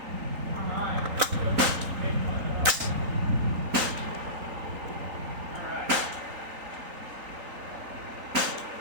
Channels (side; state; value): left; late; 3.8 ms